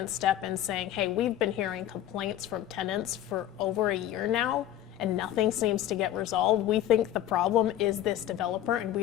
step in saying, hey, we've been hearing complaints from tenants for over a year now, and nothing seems to get resolved. We think the problem is this developer, and we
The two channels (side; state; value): right; quieter; 12.0 dB